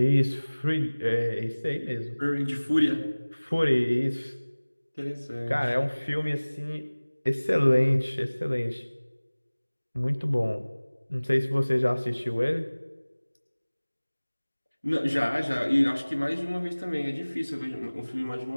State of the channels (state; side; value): inverted; both; correlation -1.00